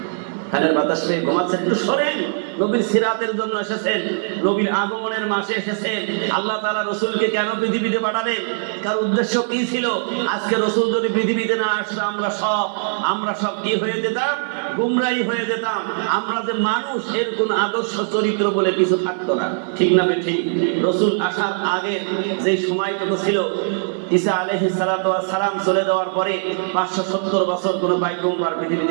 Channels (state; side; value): silent; left; 55 dB below the other